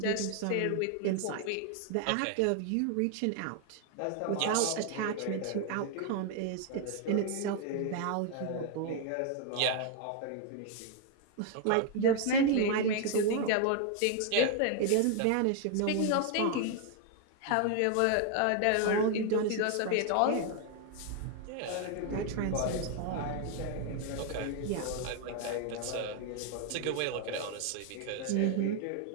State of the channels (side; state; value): both; different; correlation 0.00